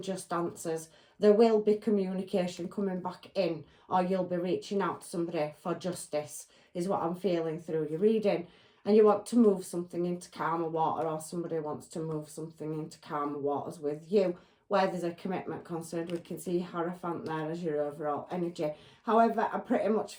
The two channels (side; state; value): both; identical; correlation 1.00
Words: answers. There will be communication coming back in, or you'll be reaching out to somebody for justice, is what I'm feeling through your reading. and you want to move something into calmer water, or somebody wants to move something into calmer waters with you, where there's a commitment concerned. We can see Hierophant there as your overall energy. However, I pretty much